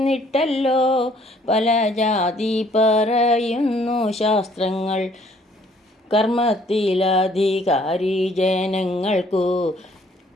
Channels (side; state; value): both; normal; correlation 0.61